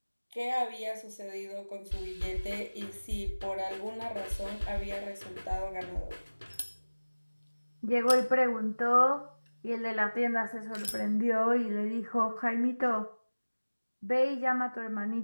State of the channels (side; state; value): both; inverted; correlation -1.00